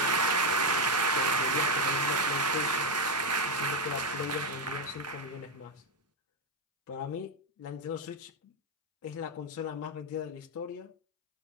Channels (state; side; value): normal; both; correlation 0.04